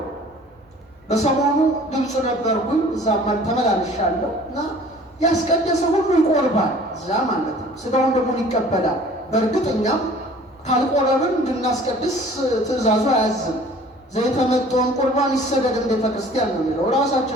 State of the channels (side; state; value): both; normal; correlation 0.49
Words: በሰሞኑ ግብፅ ነበርኩኝ። እዛም ተመላልሻለሁ እና ያስቀደሰ ሁሉ ይቆርባል እዛ ማለት ነው። ስጋውን ደሙን ይቀበላል። በእርግጥ እኛም ካልቆረብን እንድናስቀድስ ትእዛዙ አያዝም። ዘይተመጠውን ቁርባን ይሰገድ እንደ ቤተ ክርስቲያን ነው የሚለው።